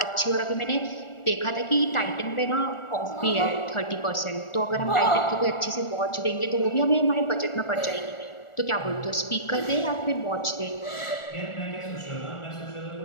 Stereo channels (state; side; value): late; right; 1.4 ms